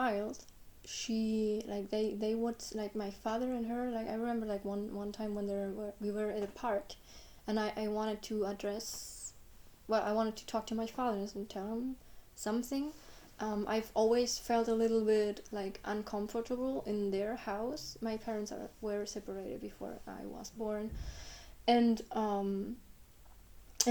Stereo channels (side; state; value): both; identical; correlation 1.00